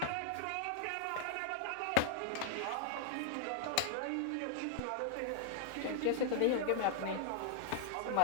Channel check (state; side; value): different; both; correlation 0.00